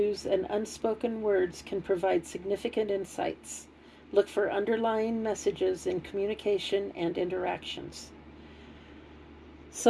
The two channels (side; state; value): both; identical; correlation 1.00